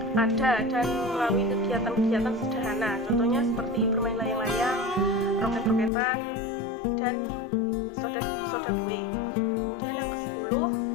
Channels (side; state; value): right; drops out; at 5.9 s